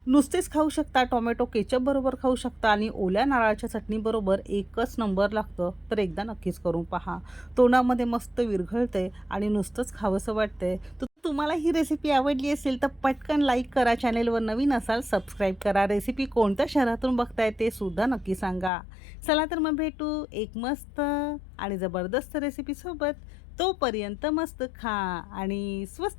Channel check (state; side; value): drops out; right; at 18.7 s